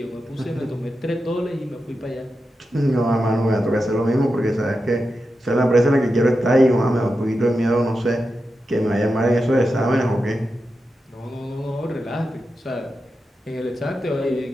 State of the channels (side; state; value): both; normal; correlation 0.89